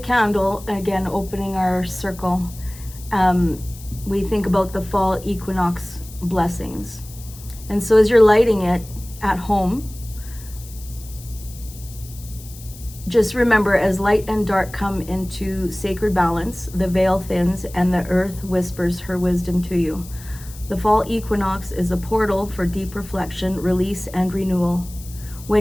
again, opening our circle, we think about the fall equinox blessings. And so as you're lighting it at home, just remember, as light and dark come into sacred balance, the veil thins and the earth whispers her wisdom to you. The fall equinox is a portal for deep reflection, release, and renewal.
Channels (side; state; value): left; noise; hiss, 18 dB below the sound